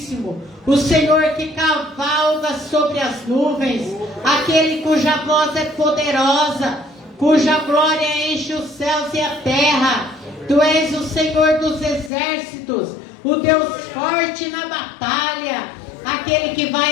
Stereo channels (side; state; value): right; drops out; at 12.1 s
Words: o Senhor que cavalga sobre as nuvens, aquele cuja voz é poderosa, cuja glória enche os céus e a terra. Tu és o Senhor dos exércitos, o Deus forte na batalha, aquele que